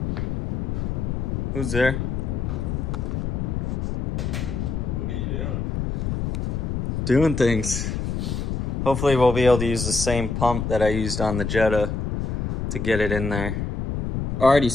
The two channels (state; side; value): noise; left; rumble, 2 dB below the sound